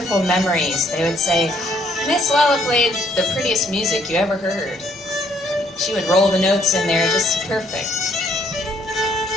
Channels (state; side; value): normal; both; correlation 0.68